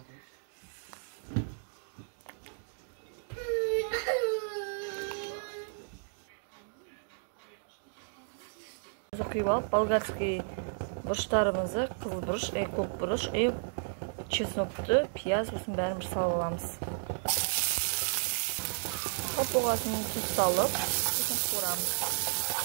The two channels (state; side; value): silent; left; digital silence